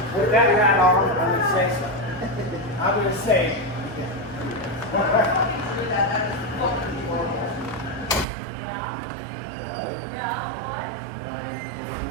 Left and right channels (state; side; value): drops out; left; at 8.2 s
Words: With that hat on, I'm gonna say something. I'm gonna say.